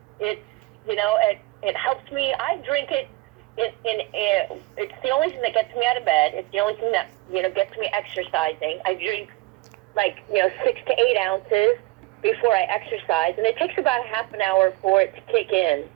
it helps me. I drink it. It's the only thing that gets me out of bed. It's the only thing that gets me exercising. I drink 6 to 8 ounces before I exercise, and it takes about a half an hour for it to kick in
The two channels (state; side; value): quieter; left; 21.0 dB